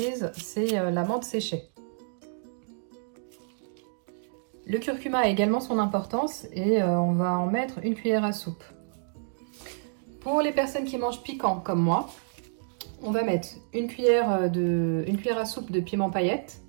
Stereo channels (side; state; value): left; silent; digital silence